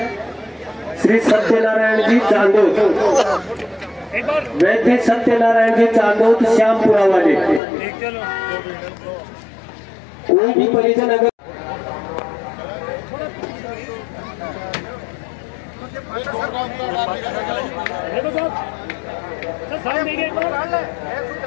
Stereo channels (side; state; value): right; drops out; at 7.6 s